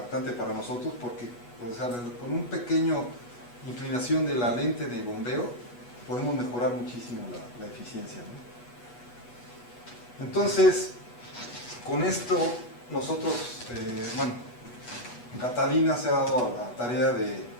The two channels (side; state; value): right; late; 8.2 ms